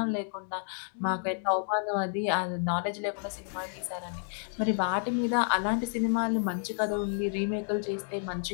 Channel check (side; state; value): right; silent; digital silence